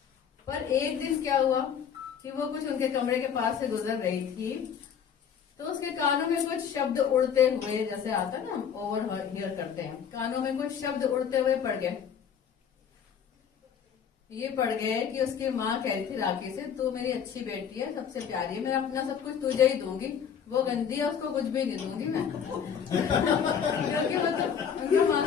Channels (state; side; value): quieter; right; 7.6 dB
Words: पर एक दिन क्या हुआ कि वो कुछ उनके कमरे के पास से गुजर रही थी, तो उसके कानों में कुछ शब्द उड़ते हुए, जैसे आता है ना ओवर हियर करते हैं, कानों में कुछ शब्द उड़ते हुए पड़ गए। ये पड़ गए कि उसकी माँ कह रही थी राखी से, तू मेरी अच्छी बेटी है, सबसे प्यारी है, मैं अपना सब कुछ तुझे ही दूंगी, वो गंदी है उसको कुछ भी नहीं दूंगी मैं। क्योंकि वो तो उनका